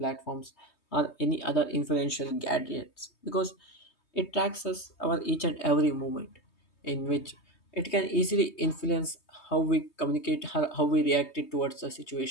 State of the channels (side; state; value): right; late; 3.2 ms